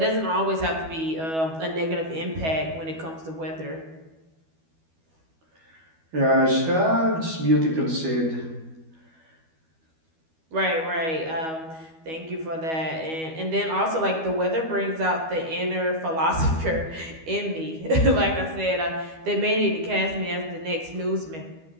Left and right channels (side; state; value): left; late; 12 ms